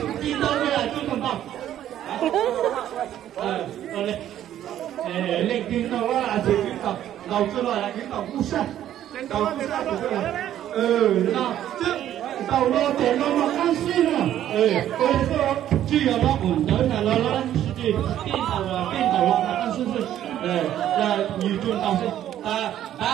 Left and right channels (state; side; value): quieter; left; 11.6 dB